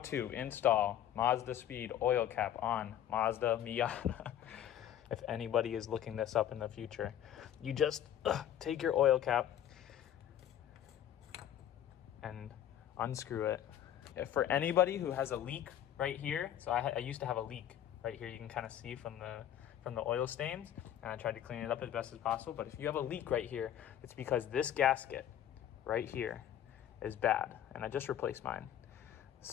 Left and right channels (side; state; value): right; quieter; 10.8 dB